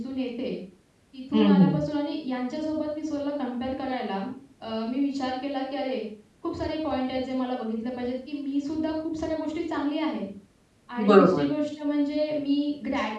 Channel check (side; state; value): both; identical; correlation 1.00